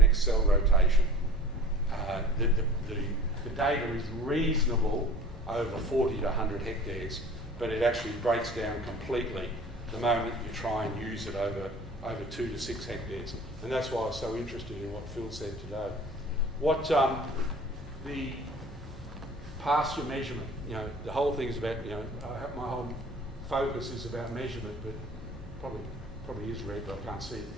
cell rotation. The data is reasonable over 40 to 100 hectares, but it actually breaks down completely the moment you try and use it over 2 to 6 hectares. And that's why I was so interested in what Phil said today. What the pasture measurement, the whole thing is about, my whole focus is about measurement, but probably is red, but I can't see it.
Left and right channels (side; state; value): both; normal; correlation 0.45